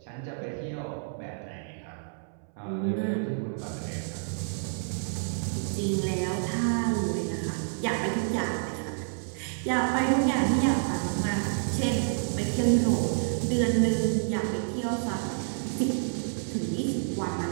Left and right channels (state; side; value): silent; left; 59 dB below the other